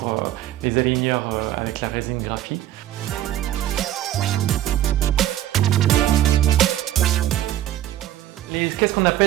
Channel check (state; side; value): quieter; left; 12.7 dB